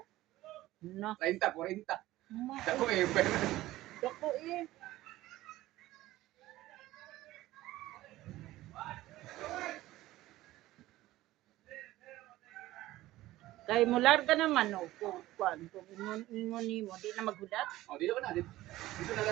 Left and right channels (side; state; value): left; quieter; 16.4 dB